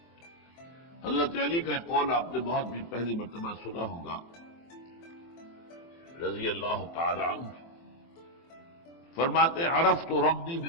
حضرت علی کا ایک قول آپ نے بہت بھی پہلی مرتبہ سنا ہوگا رضی اللہ تعالی عنہ. فرماتے عرفت ربی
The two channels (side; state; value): right; late; 24 ms